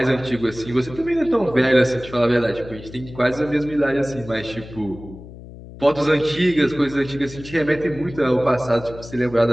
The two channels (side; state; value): left; noise; hum, 16 dB below the sound